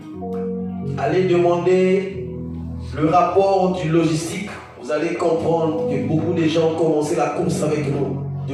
Allez demander le rapport du logistique. Vous allez comprendre que beaucoup de gens ont commencé la course avec nous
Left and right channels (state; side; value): identical; both; correlation 1.00